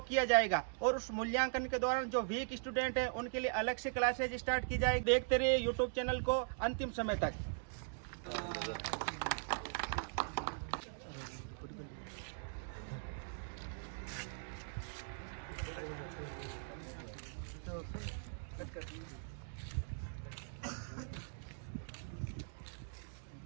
किया जाएगा और उस मूल्यांकन के दौरान जो वीक स्टूडेंट है उनके लिए अलग से क्लासेज स्टार्ट की जाएगी। देखते रहिए यूट्यूब चैनल को अंतिम समय तक।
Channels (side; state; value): left; silent; digital silence